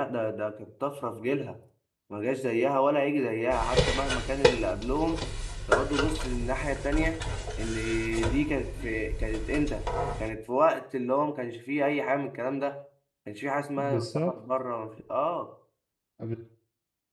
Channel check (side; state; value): both; identical; correlation 1.00